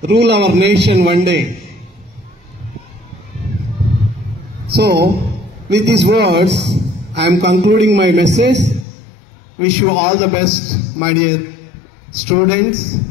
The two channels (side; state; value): right; drops out; at 8.8 s